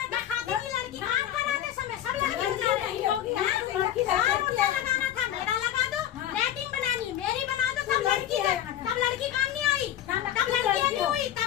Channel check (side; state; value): right; quieter; 11.4 dB